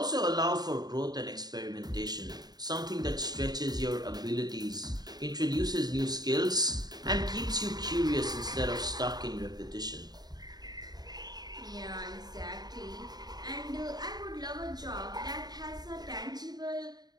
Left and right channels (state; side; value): late; left; 0.19 ms